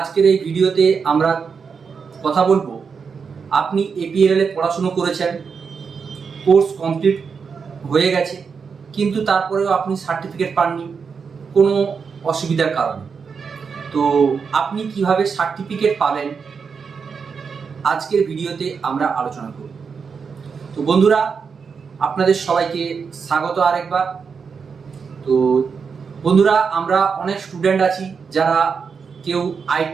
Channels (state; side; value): quieter; left; 5.8 dB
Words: এই ভিডিওতে আমরা কথা বলবো, আপনি এপিএল এ পড়াশুনো করেছেন, কোর্স কমপ্লিট হয়ে গেছে, কিন্তু তারপরেও আপনি সার্টিফিকেট পাননি কোনো অসুবিধার কারণে। তো আপনি কিভাবে সার্টিফিকেট পাবেন আজকের ভিডিওতে আমরা আলোচনা করব। তো বন্ধুরা, আপনাদের সবাইকে স্বাগত আরেকবার। তো বন্ধুরা, আমরা অনেক স্টুডেন্ট আছি যারা কেউ